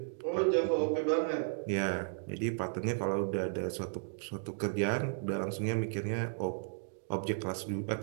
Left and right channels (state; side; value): silent; left; digital silence